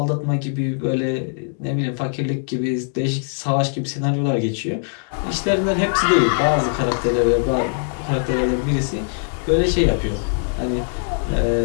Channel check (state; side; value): silent; right; digital silence